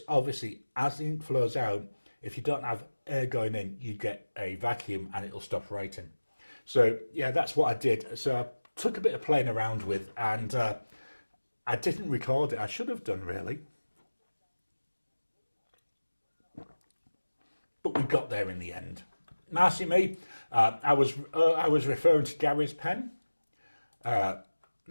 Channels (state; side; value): inverted; both; correlation -1.00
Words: obviously as the ink flows out, if you don't have air going in, you get a vacuum and it'll stop writing. So yeah, that's what I did. So I took a bit of playing around with, and I didn't record it. I should have done, really. But we got there in the end. Marcy Me, I was referring to Gary's pen.